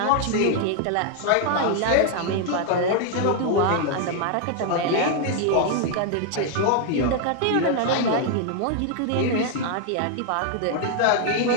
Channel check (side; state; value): both; different; correlation 0.00